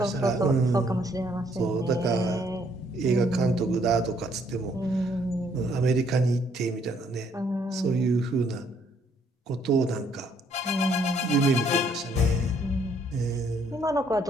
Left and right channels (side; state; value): both; normal; correlation 0.67